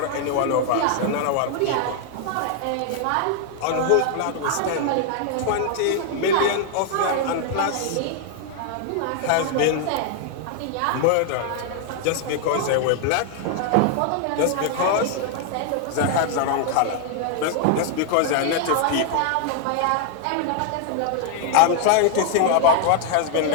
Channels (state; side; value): different; both; correlation 0.00